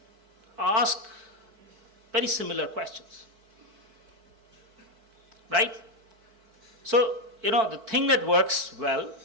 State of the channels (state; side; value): late; left; 4.5 ms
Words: ask very similar questions, right? So, the thing that works well